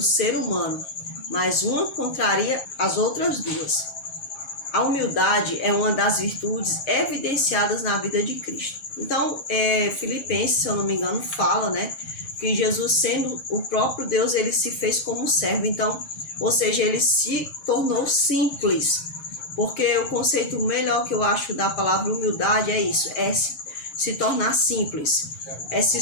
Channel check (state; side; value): late; right; 7.4 ms